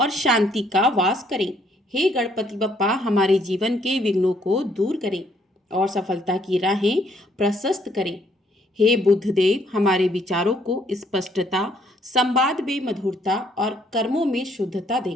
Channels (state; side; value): normal; both; correlation 0.67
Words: शांति का वास करें। हे गणपति बप्पा, हमारे जीवन के विघ्नों को दूर करें और सफलता की राहें प्रशस्त करें। हे बुद्धदेव, हमारे विचारों को स्पष्टता, संवाद में मधुरता और कर्मों में शुद्धता